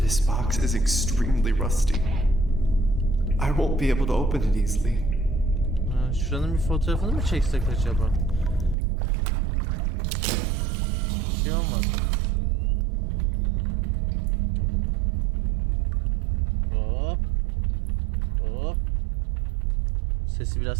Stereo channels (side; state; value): left; drops out; at 8.8 s